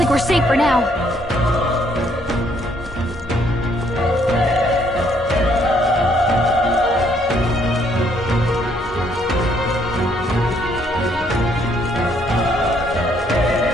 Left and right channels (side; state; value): both; normal; correlation 0.68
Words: we're safe for now.